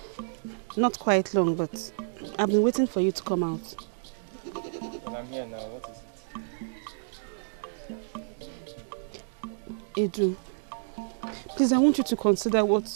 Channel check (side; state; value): left; silent; digital silence